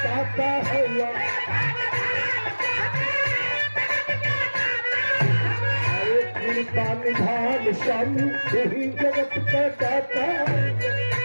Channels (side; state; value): both; inverted; correlation -1.00